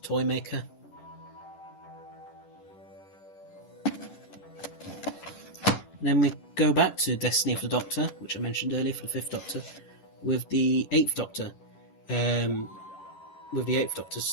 Toymaker. Then we go back to Destiny of the Doctor, which I mentioned earlier for the 5th Doctor, with the 8th Doctor. With the 8th Doctor's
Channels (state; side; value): late; right; 11 ms